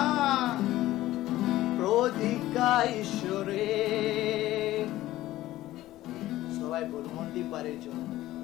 প্রতিজ্ঞা ঈশ্বরে। সবাই বলুন মন্দিপারের জন্য।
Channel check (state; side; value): quieter; right; 15.6 dB